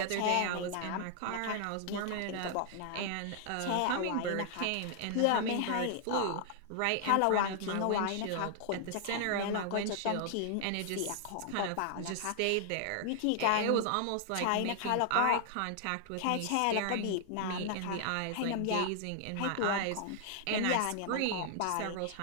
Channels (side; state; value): both; different; correlation 0.00